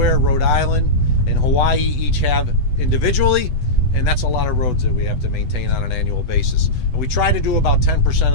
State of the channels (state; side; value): late; right; 8.0 ms